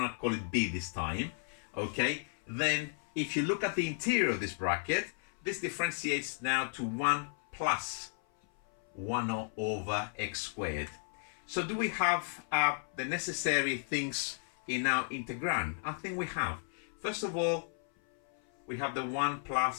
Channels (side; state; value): right; silent; 55 dB below the other